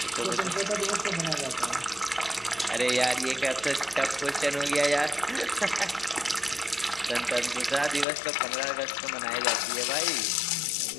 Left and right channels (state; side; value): drops out; right; at 8.1 s